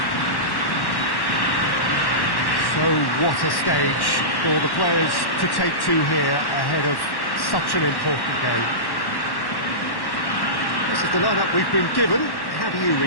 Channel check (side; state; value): right; late; 1.1 ms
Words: So what a stage for the players to take to here ahead of such an important game. This is the lineup we've been given. How do you